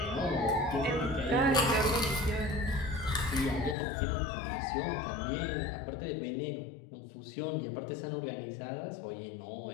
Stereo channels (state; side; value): drops out; right; at 3.8 s